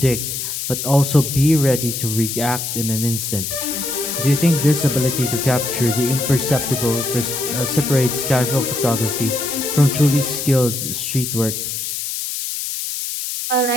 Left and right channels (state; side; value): noise; left; hiss, 4 dB below the sound